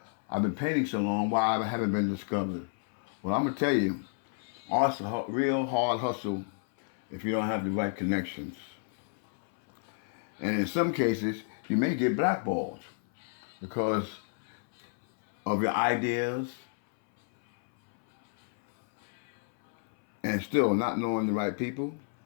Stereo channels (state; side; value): silent; right; 57 dB below the other